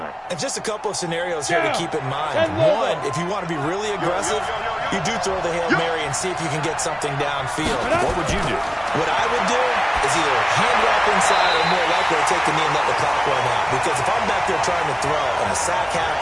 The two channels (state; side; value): identical; both; correlation 1.00